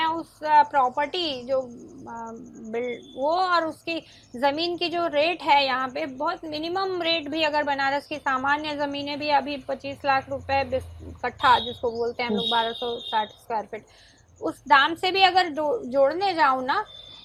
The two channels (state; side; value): identical; both; correlation 1.00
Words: उस प्रॉपर्टी जो वो और उसकी ज़मीन की जो रेट है यहाँ पे, बहुत मिनिमम रेट भी, अगर बनारस की सामान्य ज़मीनें भी अभी 25 लाख रुपए कट्ठा जिसको बोलते हैं हम लोग, 1260 स्क्वायर फीट, उस दाम से भी अगर जोड़ने जाऊँ ना,